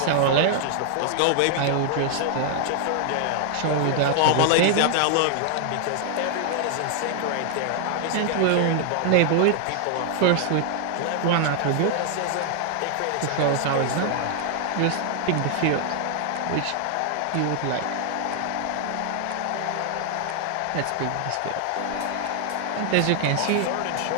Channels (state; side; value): different; both; correlation 0.00